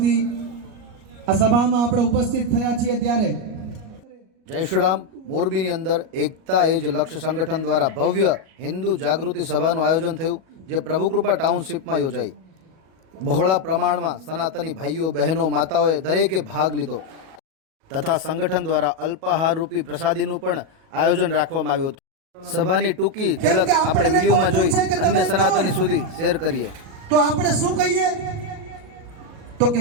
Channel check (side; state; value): left; late; 37 ms